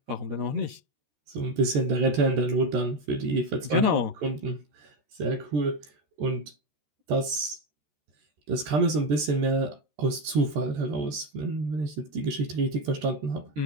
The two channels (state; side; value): late; left; 13 ms